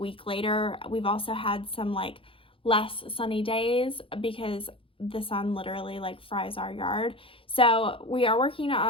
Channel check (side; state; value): right; late; 0.26 ms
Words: later. We've also had some like less sunny days because the sun literally like fries our yard. So we are working